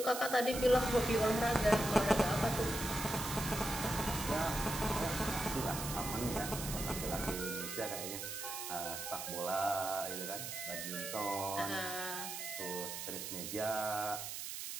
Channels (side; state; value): right; noise; hiss, 6 dB below the sound